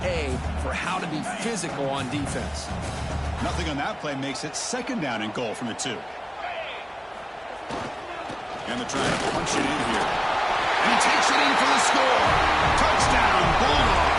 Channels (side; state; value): both; identical; correlation 1.00